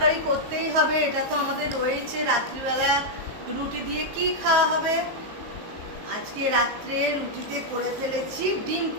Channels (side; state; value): left; late; 19 ms